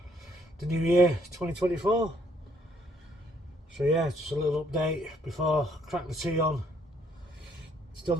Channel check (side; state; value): both; normal; correlation 0.68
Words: the new year 2024. So yeah, just a little update before I crack the tea on. Still